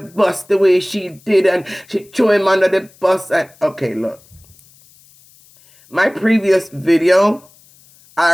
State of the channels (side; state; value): left; noise; hiss, 28 dB below the sound